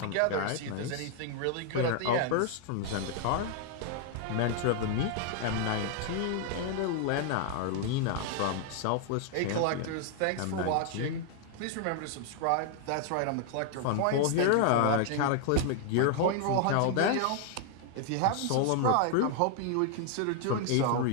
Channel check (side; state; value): both; different; correlation 0.00